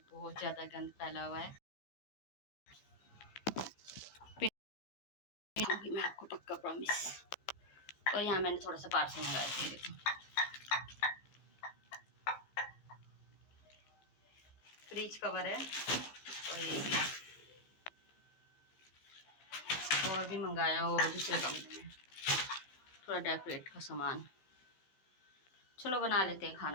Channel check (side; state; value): right; late; 15 ms